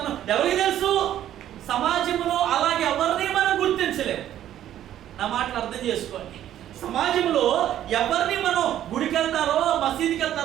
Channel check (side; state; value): left; quieter; 11.7 dB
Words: ఎవరికి తెలుసు? సమాజంలో అలాగే ఎవరిని మనం గుర్తించలేము. నా మాటలు అర్థం చేసుకోండి. సమాజంలో ఎవరిని మనం గుడికి వెళ్తారో, మసీదుకి